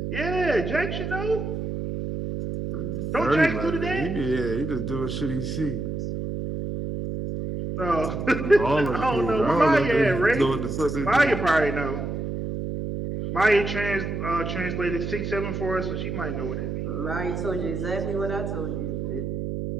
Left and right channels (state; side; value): noise; right; hum, 4 dB below the sound